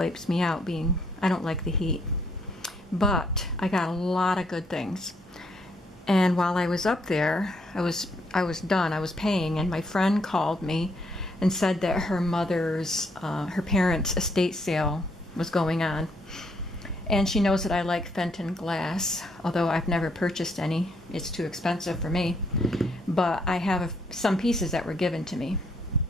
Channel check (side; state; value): both; normal; correlation 0.71